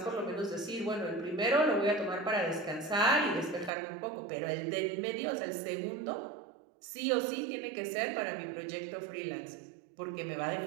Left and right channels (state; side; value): drops out; left; at 3.7 s